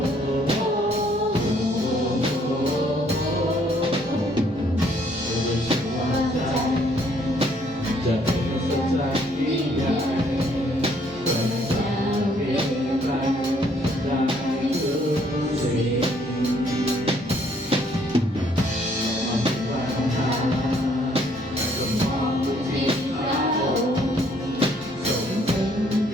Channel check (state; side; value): normal; both; correlation 0.65